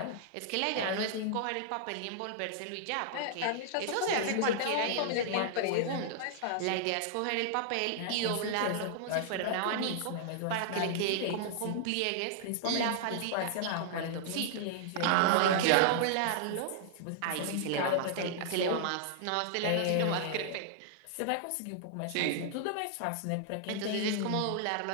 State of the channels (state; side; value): different; both; correlation -0.01